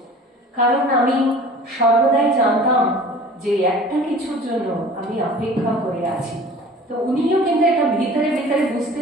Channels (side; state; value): both; normal; correlation 0.44